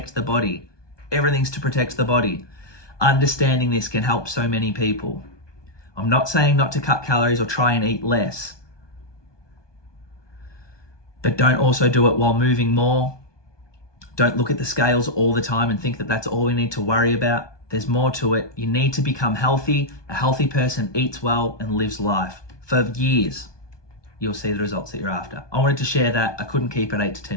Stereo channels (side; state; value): right; late; 1.2 ms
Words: the body. Everything's to protect the body. Understanding this can help so many people. I'm not saying not to cut calories or try and eat less. But don't also do it while moving more. Don't look at the scales all the time and think that that's all we need to worry about. There's more to it. You need to become healthy. A healthy person eats well and lives life for years. You'll see the results that you're after. I wanted to share that. I couldn't keep it 8 to